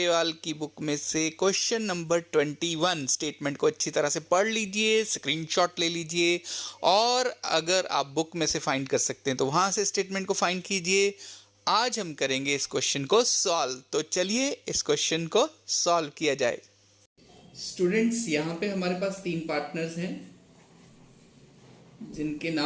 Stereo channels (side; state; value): both; identical; correlation 1.00